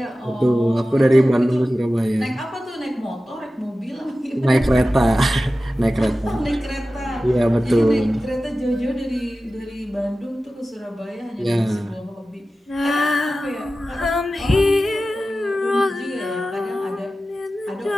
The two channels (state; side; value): normal; both; correlation 0.95